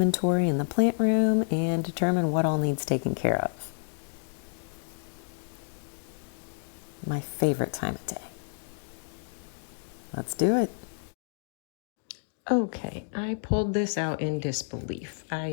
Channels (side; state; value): right; silent; digital silence